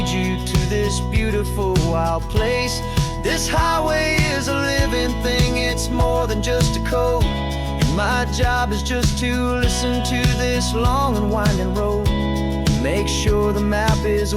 you to this beautiful wild place. This highway is a living thing, it's more than just a code. And my job is just to listen to this long and winding road and make sure the map is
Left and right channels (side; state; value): both; identical; correlation 1.00